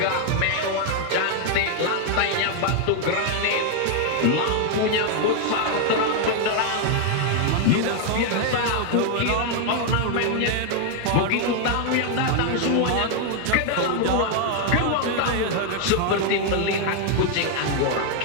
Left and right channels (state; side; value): different; both; correlation 0.00